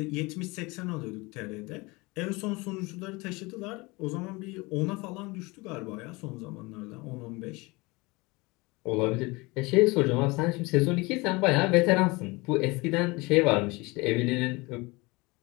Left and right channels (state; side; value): quieter; right; 24.5 dB